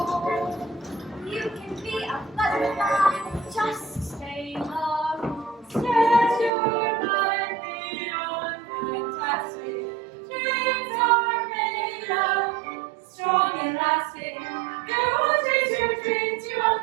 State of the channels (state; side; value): drops out; left; at 6.5 s